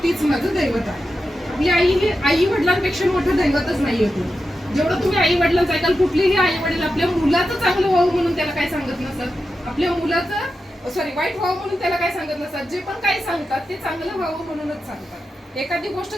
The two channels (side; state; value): both; normal; correlation 0.90